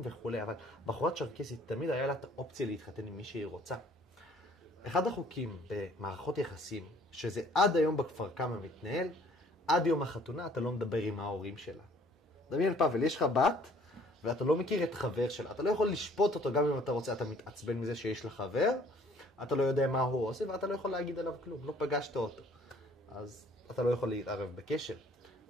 וכו', אבל בחורה צ'רקסית תמיד היה לה את האופציה להתחתן עם מי שהיא רוצה. אחד החוקים במערכות יחסים, שזה עד היום בכפר קמא מתנהל, עד יום החתונה אתה לא מדבר עם ההורים שלה. דמיין פאבל, יש לך בת, ואתה לא מכיר את חבר שלה. אתה לא יכול לשפוט אותו גם אם אתה רוצה, אתה מתעצבן מזה שיש לך חבר, אתה לא יודע מה הוא עושה, ואתה לא יכול להגיד עליו כלום, לא פגשת אותו. אז אתה לא יכול להתערב בקשר.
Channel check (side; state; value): both; normal; correlation 0.57